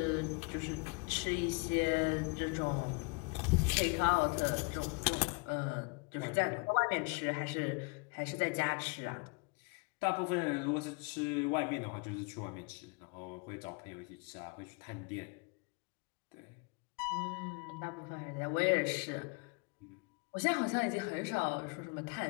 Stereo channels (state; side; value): quieter; right; 30.8 dB